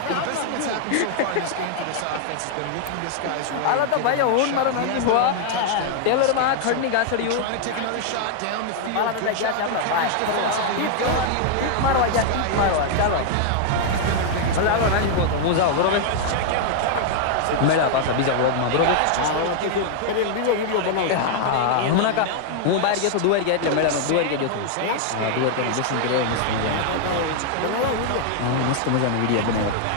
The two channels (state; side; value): different; both; correlation 0.00